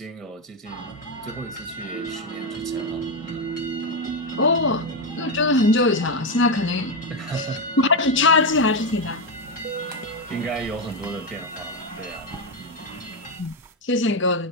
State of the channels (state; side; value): normal; both; correlation 0.08